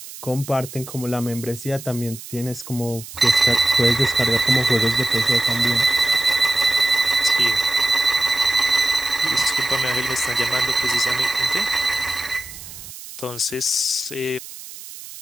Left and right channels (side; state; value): right; noise; hiss, 14 dB below the sound